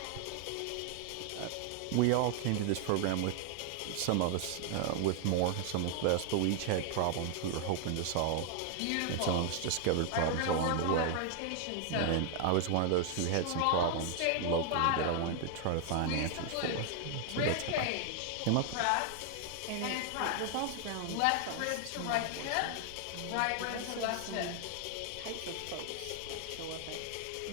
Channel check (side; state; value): both; different; correlation 0.00